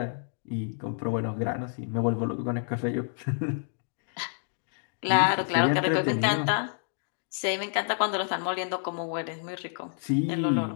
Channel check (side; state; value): right; silent; digital silence